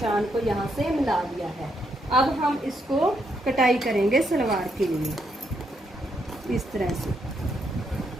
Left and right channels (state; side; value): normal; both; correlation 0.77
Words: को यहाँ से मिला दिया है। अब हम इसको कटाई करेंगे सलवार के लिए इस तरह से।